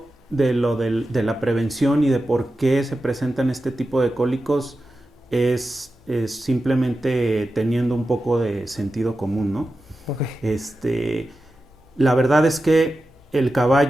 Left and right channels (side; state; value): both; normal; correlation 0.92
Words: de la prevención y de por qué se presentan este tipo de cólicos es simplemente teniendo un poco de sentido común, ¿no? Ok. La verdad es que el